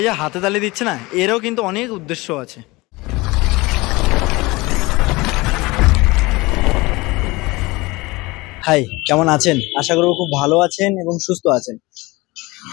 যে হাতে তালি দিচ্ছে না, এরও কিন্তু অনেক উদ্দেশ্য আছে। হাই, কেমন আছেন? আশা করব খুব ভালো আছেন এবং সুস্থ আছেন।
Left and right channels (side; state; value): right; quieter; 22.5 dB